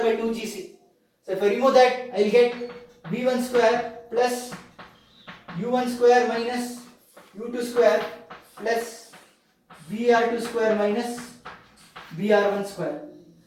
by 2Gc. So if I remove that, I will get V1 square plus U1 square minus U2 square plus VR2 square minus VR1 square.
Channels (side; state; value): both; identical; correlation 1.00